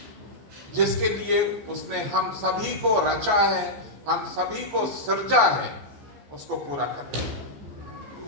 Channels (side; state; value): left; late; 14 ms